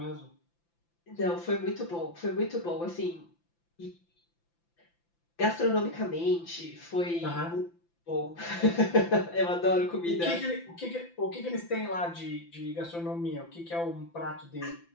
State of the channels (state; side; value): late; right; 5.9 ms